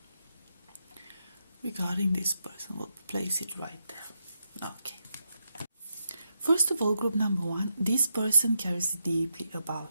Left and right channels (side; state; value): both; inverted; correlation -0.84